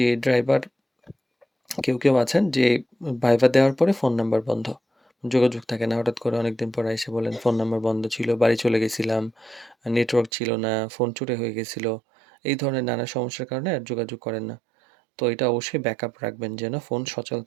ড্রাইভার কেউ আছেন যে ভাইভা দেওয়ার পরে ফোন নাম্বার বন্ধ। যোগাযোগ থাকে না। হঠাৎ করে অনেকদিন পরে এসে বলেন, "ফোন নাম্বার বন্ধ ছিল, বাড়ি চলে গেছিলাম, নেটওয়ার্ক ছিল না, ফোন চুরি হয়ে গেছিল।" এই ধরনের নানা সমস্যার কারণে আর যোগাযোগ করেন না। তো এটা অবশ্যই ব্যাকআপ রাখবেন যেন ফোন সচল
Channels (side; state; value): left; drops out; at 10.3 s